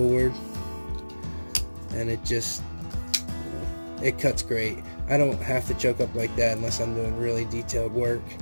and it just, it cuts great. I don't have to choke up like that unless I'm doing really detailed work.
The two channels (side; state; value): both; inverted; correlation -1.00